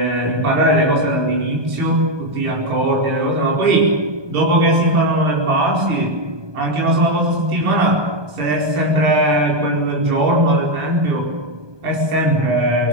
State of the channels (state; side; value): late; left; 1.2 ms